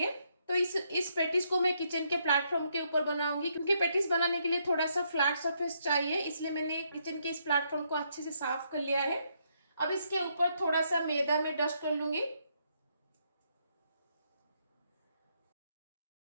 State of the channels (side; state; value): both; inverted; correlation -0.75